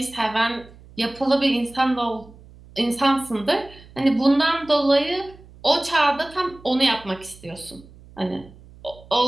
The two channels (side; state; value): right; noise; hum, 22 dB below the sound